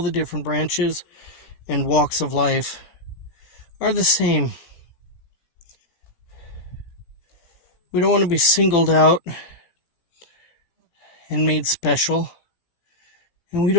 the different branches and walks of life are the same. We don't want to be singled out and made special. And we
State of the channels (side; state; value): right; late; 18 ms